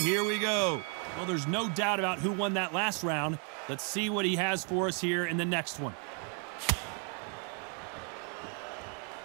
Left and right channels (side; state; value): left; quieter; 39.1 dB